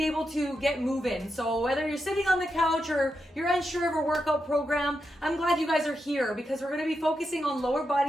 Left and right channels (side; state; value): both; normal; correlation 0.86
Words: able to get moving. So whether you're sitting on the couch or you're unsure of a workout program, I'm glad you guys are here because we're going to be focusing on lower